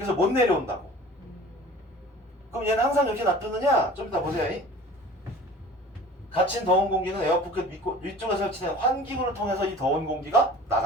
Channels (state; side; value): normal; both; correlation 0.44